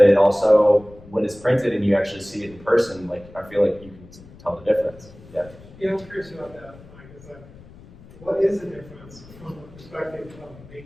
it also, when it's printed and you actually see it in person, like, I feel like you can tell the difference. Yeah. Yeah, I'm curious about that, Mike. Is like, what is the difference from the perspective of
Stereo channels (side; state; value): left; noise; rumble, 21 dB below the sound